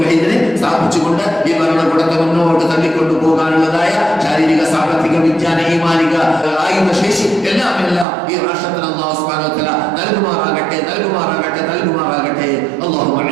സ്ഥാപിച്ചുകൊണ്ട് ഈ ഭരണകൂടത്തെ മുന്നോട്ട് തള്ളിക്കൊണ്ടു പോകാനുള്ളതായ ശാരീരിക, സാമ്പത്തിക, വിജ്ഞാന, ഈമാനിക ആയുധ ശേഷി എല്ലാം ഈ രാഷ്ട്രത്തിന് അല്ലാഹു സുബ്ഹാനഹു വ തആല നൽകുമാറാകട്ടെ, നൽകുമാറാകട്ടെ, നൽകുമാറാകട്ടെ. اللهم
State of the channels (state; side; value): drops out; left; at 8.1 s